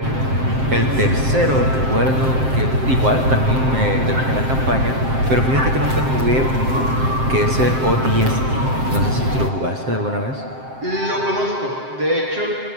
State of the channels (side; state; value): left; late; 7.6 ms